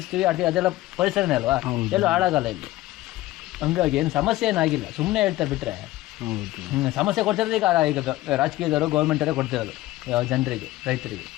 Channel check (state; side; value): quieter; right; 17.0 dB